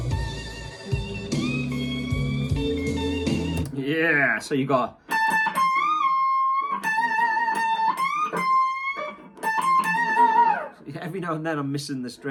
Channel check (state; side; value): identical; both; correlation 1.00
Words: Yeah, so you got every now and then I'm missing the